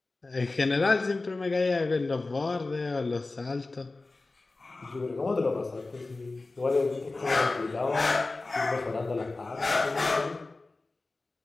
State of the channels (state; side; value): quieter; right; 3.4 dB